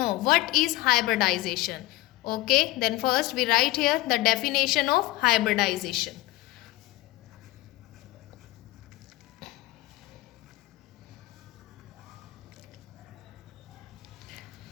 what is hybridization. Okay, then first we write here the definition of hybridization.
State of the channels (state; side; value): quieter; right; 18.6 dB